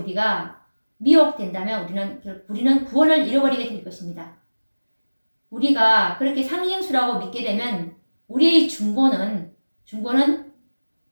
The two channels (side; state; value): both; inverted; correlation -1.00